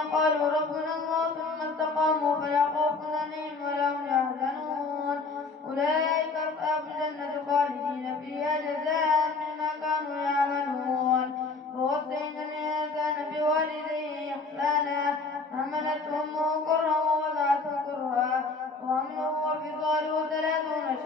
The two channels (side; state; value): right; quieter; 4.1 dB